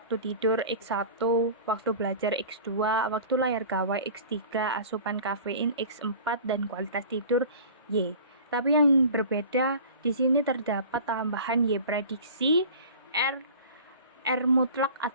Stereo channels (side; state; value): both; inverted; correlation -0.40